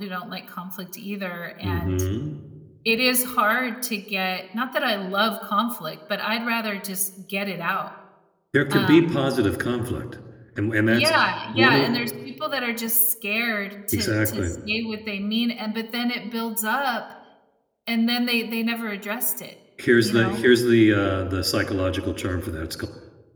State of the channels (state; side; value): identical; both; correlation 1.00